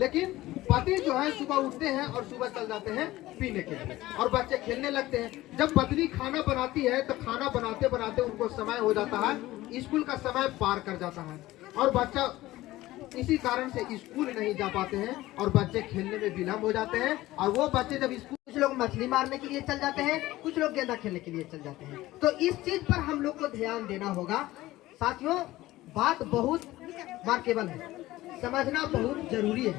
पति जो है सुबह उठते हैं और सुबह चल जाते हैं पीने के लिए और बच्चे खेलने लगते हैं। जब पत्नी खाना बनाती है तो खाना बनाते बनाते उनको समय हो जाता है, स्कूल का समय पार कर जाता है और बच्चा इसी कारण से स्कूल नहीं जा पाते हैं और बच्चे खेलने में विलम्ब हो जाते हैं। और वो बच्चे जब स्कूल, कुछ लोग मछली मारने के लिए चल जाते हैं, कुछ लोग गेंदा खेलने के लिए चल जाते हैं। तो इस चीज पर हम लोग को ध्यान देना होगा। साथियों, बात बहुत मार्केबल है, समझना बहुत जरूरी है।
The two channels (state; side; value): quieter; right; 17.0 dB